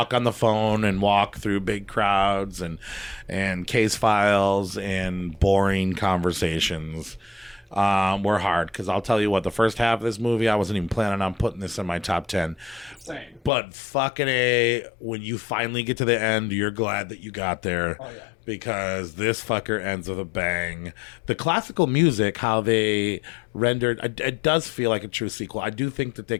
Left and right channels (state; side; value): drops out; right; at 13.5 s